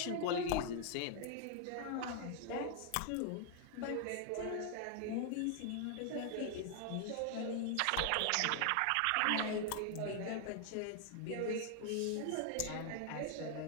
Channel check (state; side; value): different; both; correlation 0.00